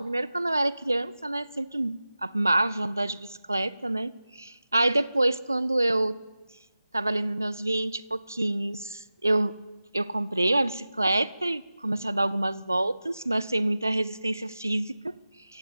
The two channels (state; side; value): inverted; both; correlation -0.95